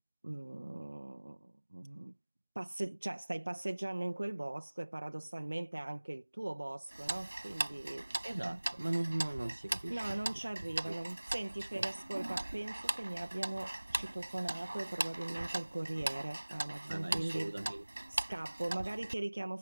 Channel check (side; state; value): both; inverted; correlation -1.00